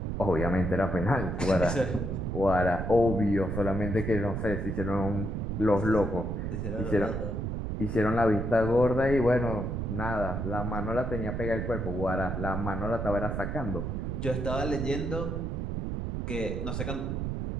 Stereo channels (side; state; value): right; noise; rumble, 3 dB below the sound